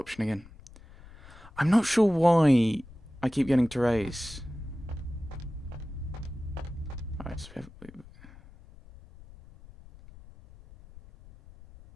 again. I'm not sure why I keep getting Therese. Alright, so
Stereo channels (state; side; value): noise; left; rumble, 20 dB below the sound